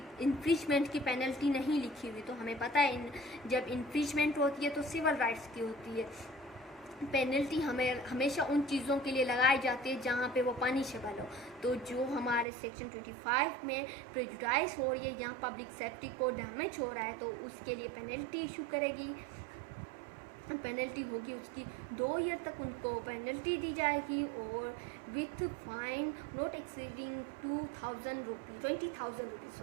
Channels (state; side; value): drops out; left; at 12.5 s